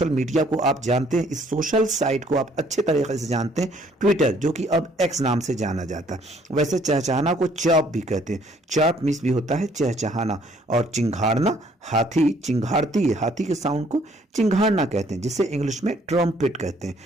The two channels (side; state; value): both; normal; correlation 0.62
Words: मीडिया को आप जानते हैं, इस सोशल साइट को आप अच्छे तरीके से जानते हैं, ट्विटर, जो कि अब एक्स नाम से जाना जाता है। वैसे चहचहाना को चॉप भी कहते हैं। चॉप मीन्स भी होता है चहचहाना। और चिंघाड़ना, हाथी चिंघाड़ती है, हाथी के साउंड को चिंघाड़ना कहते हैं, जिसे इंग्लिश में ट्रम्पेट कहते हैं।